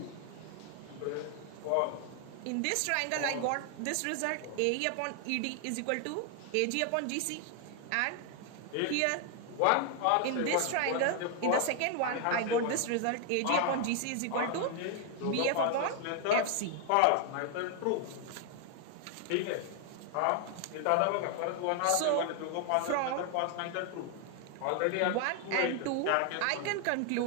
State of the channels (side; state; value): both; different; correlation 0.00